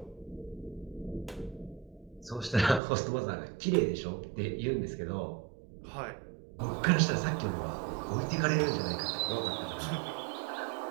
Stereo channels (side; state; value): left; drops out; at 2.8 s